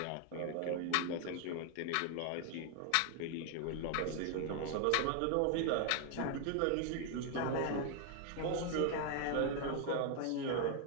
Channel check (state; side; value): different; both; correlation 0.00